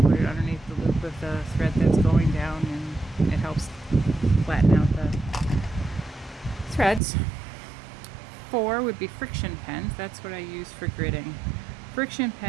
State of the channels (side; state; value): left; drops out; at 7.0 s